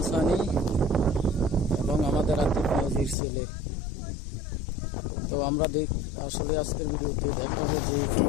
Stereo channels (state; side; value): drops out; right; at 3.2 s